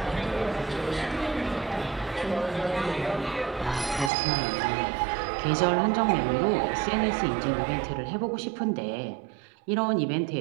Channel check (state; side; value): drops out; left; at 4.1 s